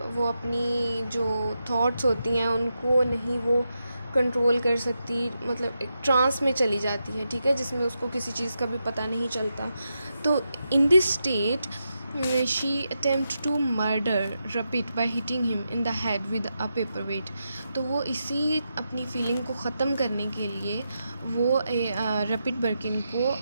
वो अपनी जो थॉट्स होती हैं उनको नहीं वो कंट्रोल कर सकती, मतलब एक ट्रांस में चली जाती है। ठीक है, जिसमें उसको किसी चीज़ का भी पता नहीं चलता। तो in this state she attempt to murder Rupert by hitting him in the head with a paperweight. तो वो इसी अपनी फीलिंग को ख़त्म करने के लिए वो रपिट बर्किन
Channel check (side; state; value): both; inverted; correlation -0.86